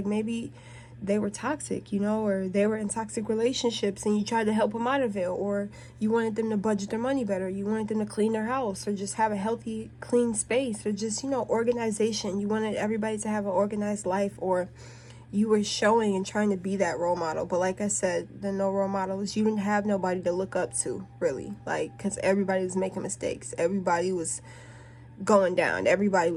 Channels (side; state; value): both; identical; correlation 1.00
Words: maybe they were toxic, or they were in toxic relationships, and you tried to help them out of it, or you wanted them to budget their money better, you wanted them to clean their house, or just have a healthy, clean space, or just, organization. You wanted everybody to have an organized life, or you were showing and trying to be that role model. But like I said, the no role models, you didn't have nobody to look up to, really. Like, because everybody was making mistakes. Everybody was going down. Everybody